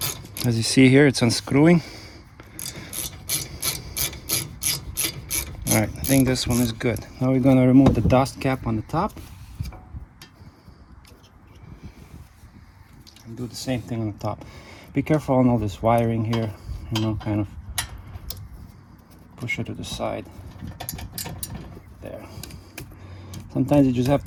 As you see here, it's unscrewing. All right, I think this one is good. Now we're gonna remove the dust cap on the top. And do the same thing on the top. Be careful on all this wiring here, you know, kind of push it to the side. There. Sometimes you just have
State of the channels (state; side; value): identical; both; correlation 1.00